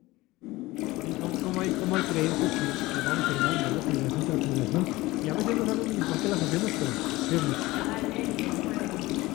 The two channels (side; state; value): right; quieter; 19.7 dB